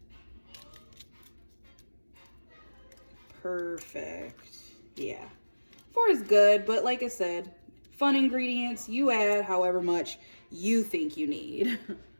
Perfect. Yeah, 4 is good, but like I said, fun ingredients, you add however much you think you need.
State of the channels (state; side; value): inverted; both; correlation -1.00